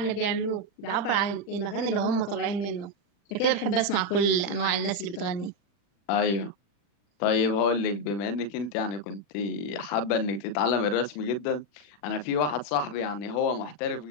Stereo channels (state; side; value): late; right; 40 ms